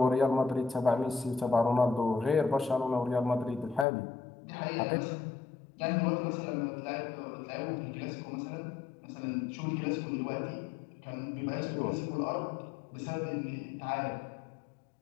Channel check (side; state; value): right; drops out; at 3.9 s